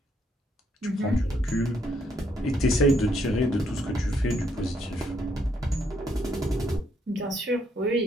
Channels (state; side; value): normal; both; correlation 0.72